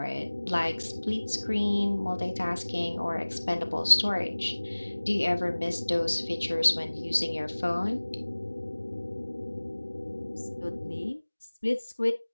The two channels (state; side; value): inverted; both; correlation -1.00